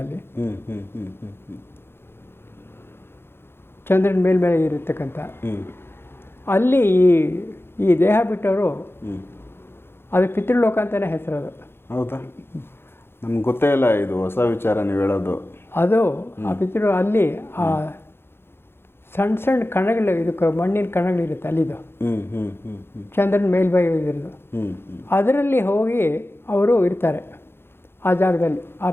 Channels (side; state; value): right; late; 0.11 ms